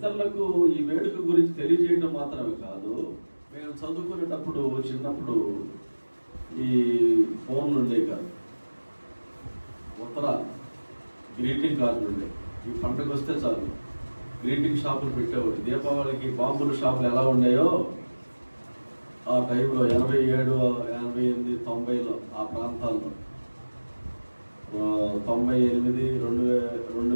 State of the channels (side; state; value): both; inverted; correlation -1.00